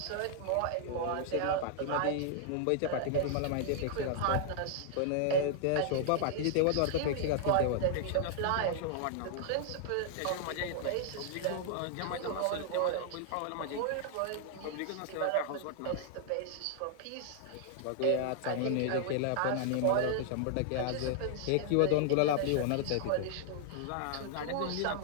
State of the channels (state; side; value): different; both; correlation -0.01